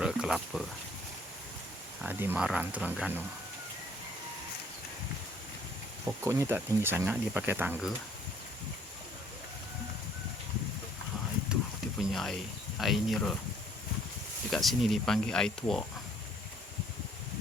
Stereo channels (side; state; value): both; normal; correlation 0.61